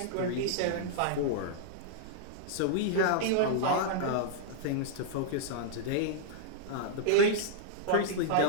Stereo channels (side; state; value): both; different; correlation -0.01